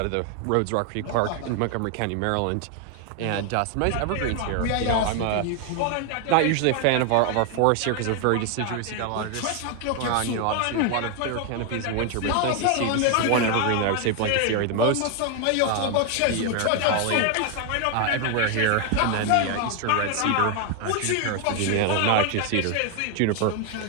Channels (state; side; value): different; both; correlation 0.01